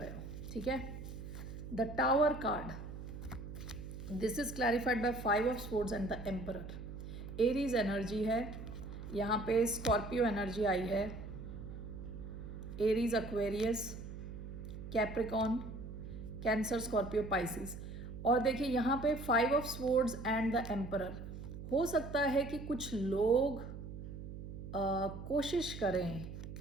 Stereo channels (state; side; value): noise; right; hum, 9 dB below the sound